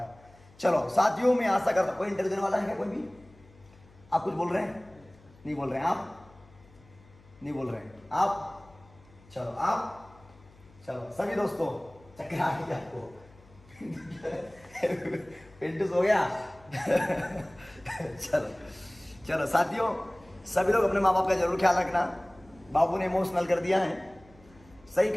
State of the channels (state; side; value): noise; left; hum, 26 dB below the sound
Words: चलो साथियों, मैं आशा करता हूं, कोई इंटरव्यू देने वाला है क्या? कोई भी? आप कुछ बोल रहे हैं? नहीं बोल रहे हैं आप? नहीं बोल रहे हैं आप? चलो आप, चलो सभी दोस्तों, चक्कर आ गई आपको? पिंटू हो गया? चलो चलो साथियों, सभी लोग अपने माँ बाप का जरूर ख्याल रखना। बाबू ने इमोशनल कर दिया है, सही